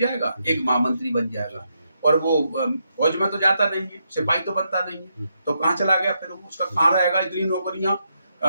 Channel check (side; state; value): both; inverted; correlation -0.81